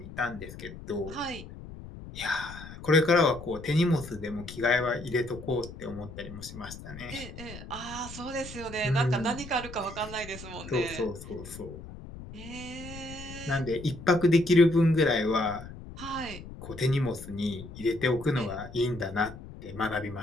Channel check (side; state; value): left; noise; rumble, 13 dB below the sound